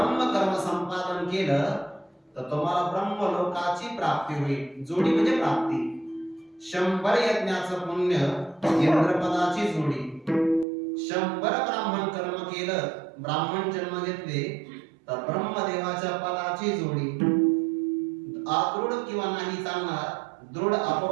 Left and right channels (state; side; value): drops out; left; at 10.7 s